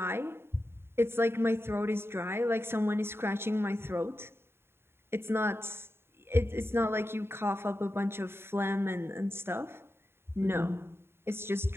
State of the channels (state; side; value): late; left; 0.11 ms